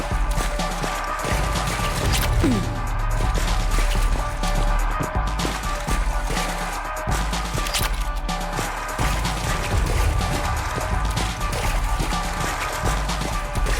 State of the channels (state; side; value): identical; both; correlation 1.00